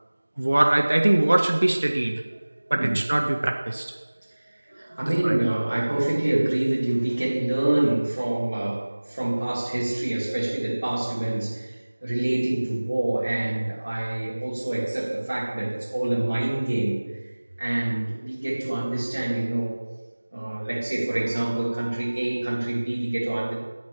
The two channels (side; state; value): both; inverted; correlation -1.00